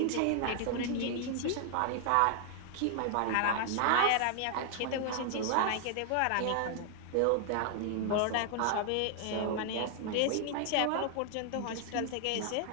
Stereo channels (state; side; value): different; both; correlation 0.00